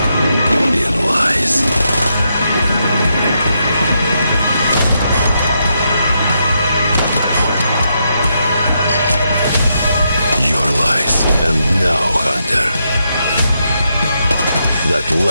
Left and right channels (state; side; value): inverted; both; correlation -0.81